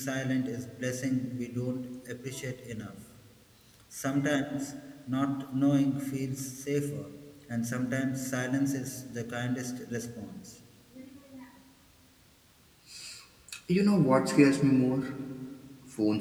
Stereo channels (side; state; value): both; identical; correlation 1.00